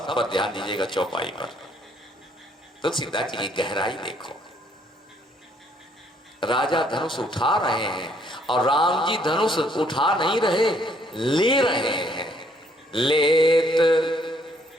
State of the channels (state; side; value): normal; both; correlation 0.66